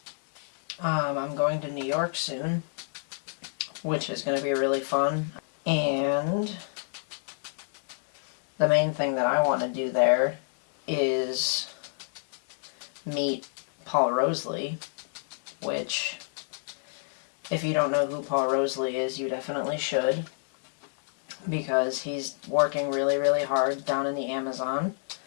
I'm going to New York soon, which is going to be really fun. And the main thing that I want to do there is meet Paul Roseley, which, if you don't know who Paul Roseley is, you definitely should, because he's working really, really hard down in the Amazon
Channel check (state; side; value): silent; right; digital silence